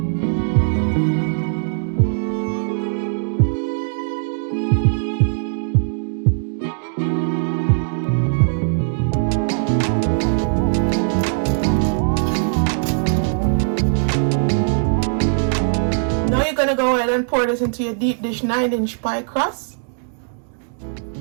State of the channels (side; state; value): left; silent; digital silence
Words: Gonna go ahead and pour this into your deep dish 9-inch pie crust.